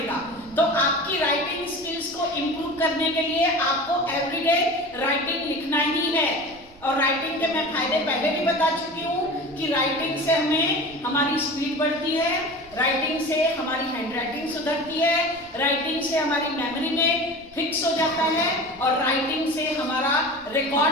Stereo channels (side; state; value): right; noise; rumble, 24 dB below the sound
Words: तो आपकी राइटिंग स्किल्स को इंप्रूव करने के लिए आपको एवरीडे राइटिंग लिखना ही है। और राइटिंग के मैं फायदे पहले भी बता चुकी हूँ कि राइटिंग से हमें हमारी स्पीड बढ़ती है, राइटिंग से हमारी हैंडराइटिंग सुधरती है, राइटिंग से हमारी मेमोरी में फिक्स हो जाता है और राइटिंग से हमारा